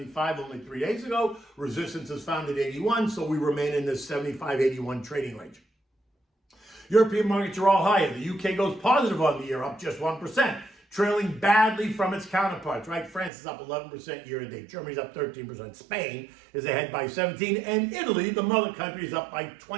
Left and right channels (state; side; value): drops out; left; at 13.3 s